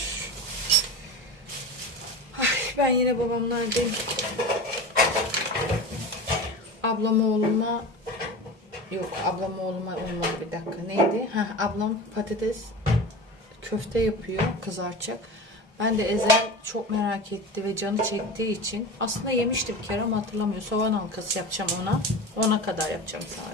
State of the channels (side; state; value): both; normal; correlation 0.30